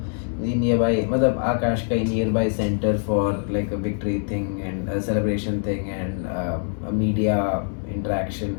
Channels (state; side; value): silent; right; 63 dB below the other